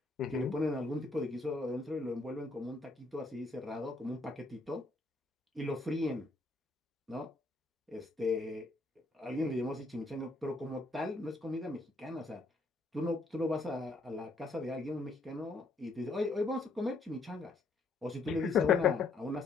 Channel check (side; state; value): right; quieter; 3.4 dB